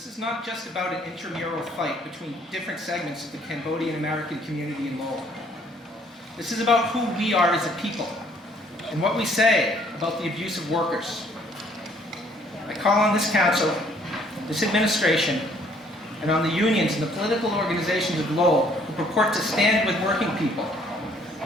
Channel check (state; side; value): normal; both; correlation 0.62